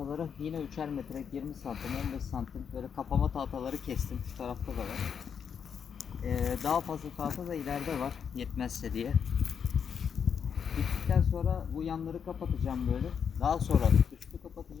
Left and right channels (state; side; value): quieter; right; 7.2 dB